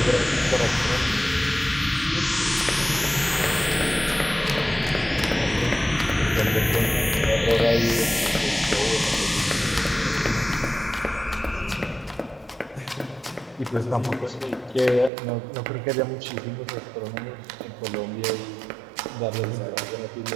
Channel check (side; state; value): left; drops out; at 15.1 s